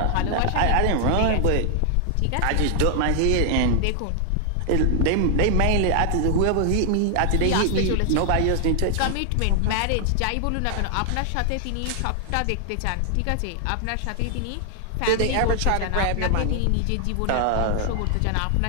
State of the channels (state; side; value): different; both; correlation 0.00